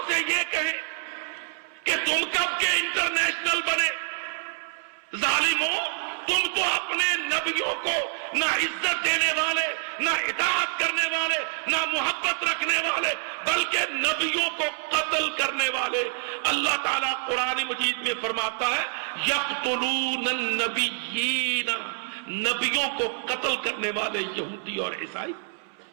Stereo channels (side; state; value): left; silent; 60 dB below the other